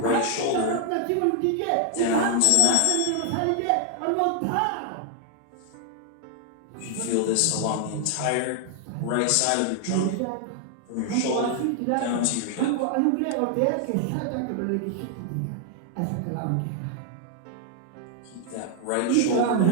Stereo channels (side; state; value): both; different; correlation 0.00